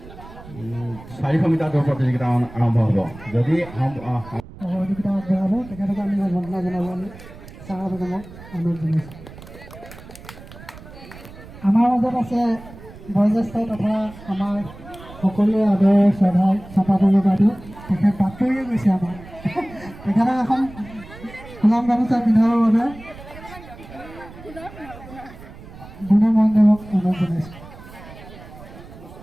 400 মিটাৰ দৌৰ প্ৰতিযোগিতা আৰম্ভ হ'ব। যদি সহযোগিতা আগবঢ়াব তেখেতক আমি সম্বৰ্ধনা জনাবলৈ চাইৰা বেগমক অনুৰোধ জনাইছোঁ। আমাৰ মাজত আছে বয়োজ্যেষ্ঠ তথা আমাৰ সকলোৱে আদৰৰ শ্ৰদ্ধাৰ চম্পা বৰুৱা বাইদেউ। তেখেত বাতৰিয়ে গৈছে আমাৰ। তেখেতক এখন গোলাম গামোচা পিন্ধাবৰ বাবে গুণৰ মহন্তদেৱক অনুৰোধ জনাইছোঁ।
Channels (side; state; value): right; noise; rumble, 17 dB below the sound